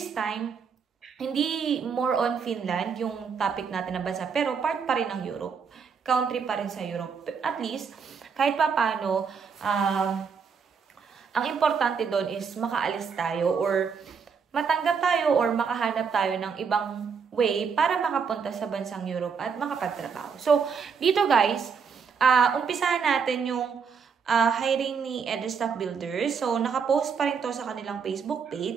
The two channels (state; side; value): quieter; left; 6.1 dB